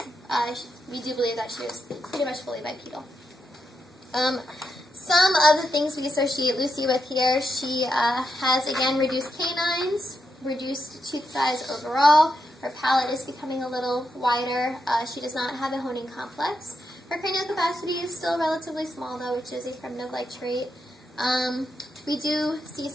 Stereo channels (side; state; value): both; normal; correlation 0.85